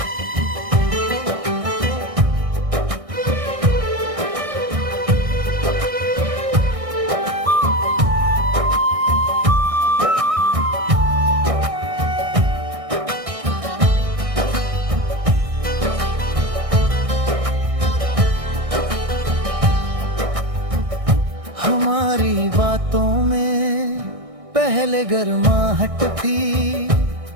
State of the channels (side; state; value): left; late; 1.6 ms